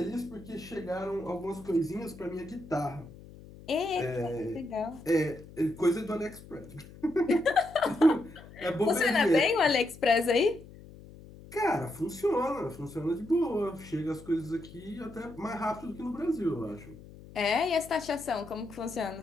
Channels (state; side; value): noise; left; hum, 18 dB below the sound